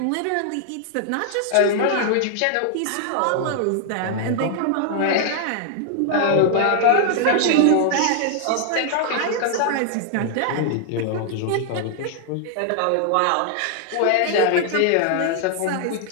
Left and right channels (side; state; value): both; different; correlation 0.00